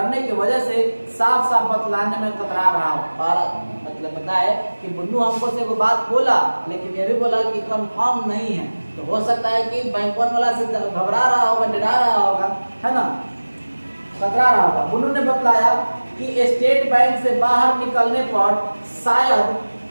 की वजह से साफ साफ बतलाने में कतरा रहा हो। और मतलब पता है कि बुन्नू हमको से वो बात बोला, लेकिन ये भी बोला कि कंफर्म नहीं है, तो हो सकता है कि बैंक वाला से घबरा रहा होगा, डरा रहा होगा, है ना, कतरा रहा होगा। बुन्नू ने बतलाया कि स्टेट बैंक से बाहर निकलने पर शायद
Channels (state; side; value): inverted; both; correlation -1.00